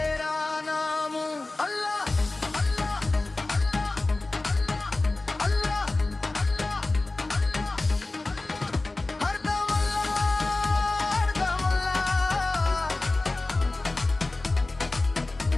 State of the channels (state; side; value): quieter; right; 3.1 dB